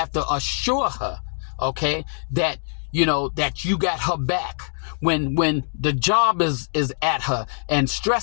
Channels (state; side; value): silent; right; digital silence